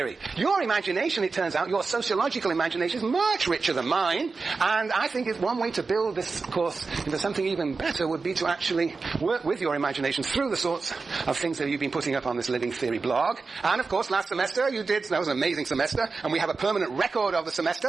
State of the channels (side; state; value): left; quieter; 4.3 dB